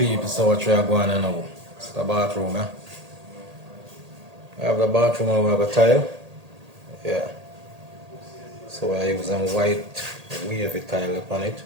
so what we are going on now? It's the bathroom, eh? We have the bathroom and we have a tile. Yeah. So we are using white wavy tile upon it.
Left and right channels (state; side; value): late; left; 1.8 ms